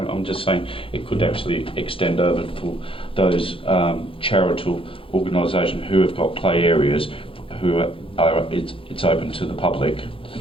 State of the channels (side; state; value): right; late; 0.26 ms